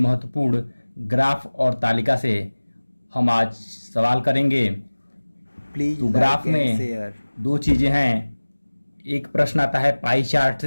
ग्राफ और तालिका से हम आज सवाल करेंगे। प्लीज तो ग्राफ लाइक एंड में शेयर। दो चीज़ें हैं, एक प्रश्न आता है पाई चार्ट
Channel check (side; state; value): both; inverted; correlation -1.00